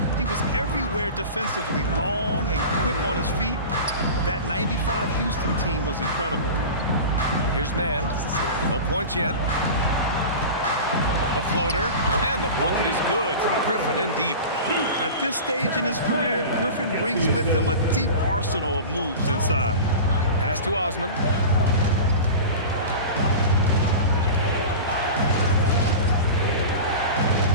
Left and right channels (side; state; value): both; inverted; correlation -0.32